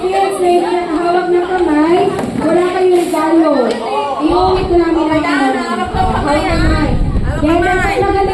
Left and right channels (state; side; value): identical; both; correlation 1.00